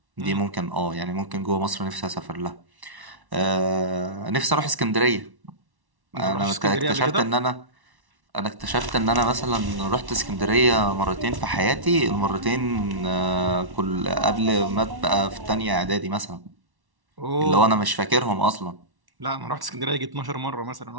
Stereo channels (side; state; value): left; late; 1.1 ms